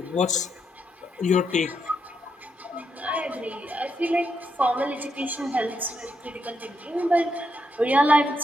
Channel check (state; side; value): normal; both; correlation 0.80